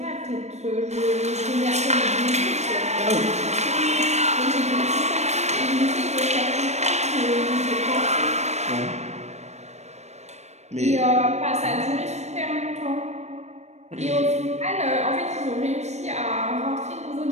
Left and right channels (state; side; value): late; left; 0.32 ms